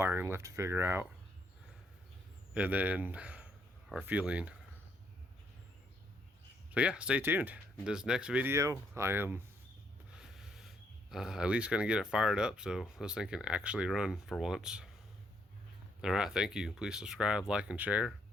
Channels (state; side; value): normal; both; correlation 0.72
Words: left to figure out. And then our fueling. So yeah, stay tuned. In this next video, I am at least going to get it fired up so this thing can actually run for once. Alright, thank you. Please subscribe, like, and share.